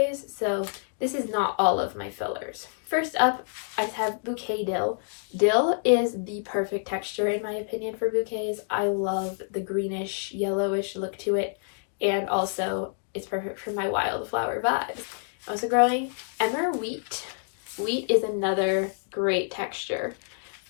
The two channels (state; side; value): silent; right; digital silence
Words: so this is not all of my fillers. First up, I have bouquet dill. Dill is the perfect texture in my opinion for bouquets. I love the greenish, yellowish look to it, and also it's perfect for my wildflower vibes. I'm also growing Emmer Wheat. Wheat is another great texture.